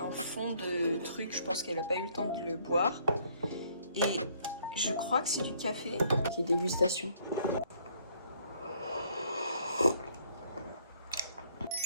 fond de truc, je pense qu'elle n'a pas eu le temps de le boire. Et je crois que c'est du café. Qui est dégustation.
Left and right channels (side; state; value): both; inverted; correlation -0.64